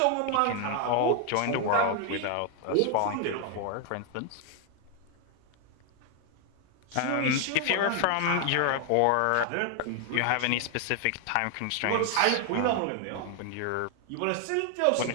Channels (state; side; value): different; both; correlation 0.00